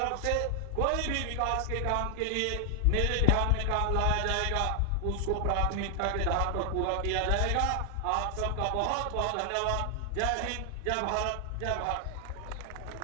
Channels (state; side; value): different; both; correlation 0.00